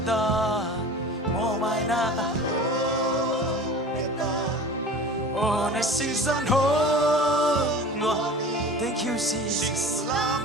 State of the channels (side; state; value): both; normal; correlation 0.38